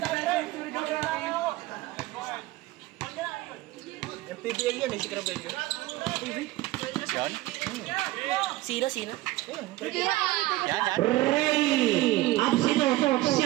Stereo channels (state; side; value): quieter; left; 17.9 dB